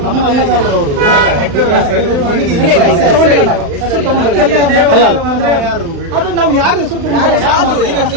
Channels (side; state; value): left; late; 35 ms